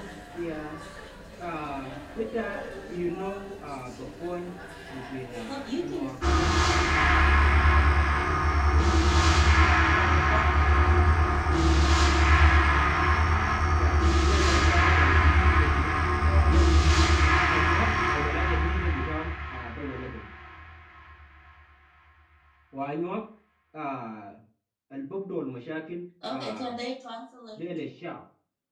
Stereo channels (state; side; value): identical; both; correlation 1.00